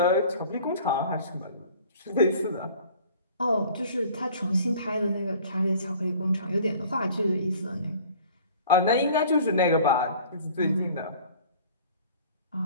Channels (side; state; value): both; inverted; correlation -0.48